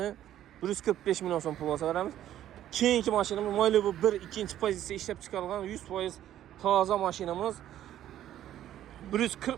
145 milyon son pul olsa verəmiz. Keyinki maşinimiz Malibu 1 ikinci pozisiya işləb çıxarılan 100% taza maşinimiz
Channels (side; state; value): left; quieter; 12.0 dB